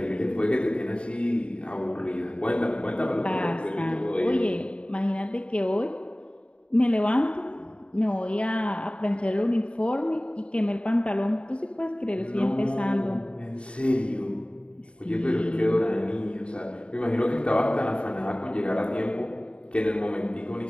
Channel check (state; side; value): late; right; 0.058 ms